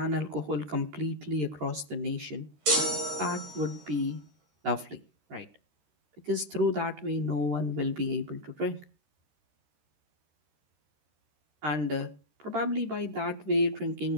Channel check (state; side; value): late; left; 13 ms